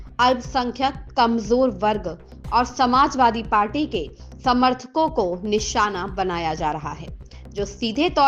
अल्पसंख्यक, कमजोर वर्ग और समाजवादी पार्टी के समर्थकों को निशाना बनाया जा रहा है, जो सीधे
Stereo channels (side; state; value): both; identical; correlation 1.00